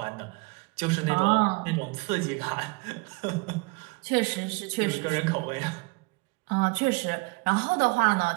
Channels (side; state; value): left; quieter; 27.3 dB